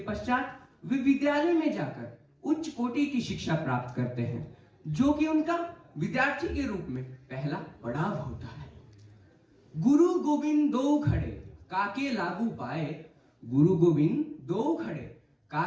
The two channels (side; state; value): both; identical; correlation 1.00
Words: वे विद्यालय में जाकर उच्च कोटि की शिक्षा प्राप्त करते हैं, जो कि उनका विद्यार्थी के रूप में पहला पड़ाव होता है। गुरु गोविंद दो खड़े काके लागू पाए, गुरु गोविंद दो खड़े